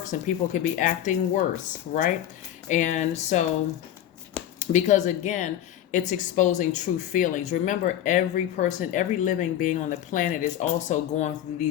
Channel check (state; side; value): quieter; right; 11.4 dB